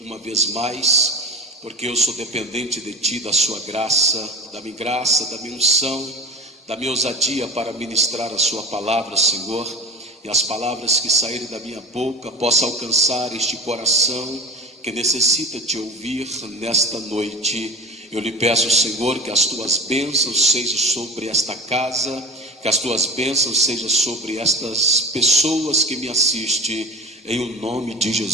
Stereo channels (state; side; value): normal; both; correlation 0.31